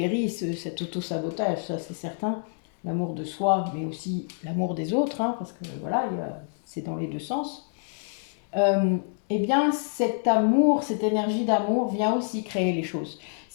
cet auto-sabotage, ça c'est certain, l'amour de soi, mais aussi l'amour des autres, hein, parce que voilà, c'est dans les deux sens. Eh bien, cet amour, cette énergie d'amour vient aussi créer les choses.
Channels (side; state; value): right; silent; 60 dB below the other